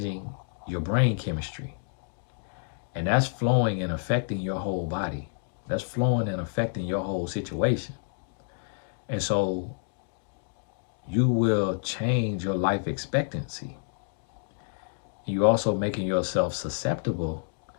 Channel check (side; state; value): right; silent; digital silence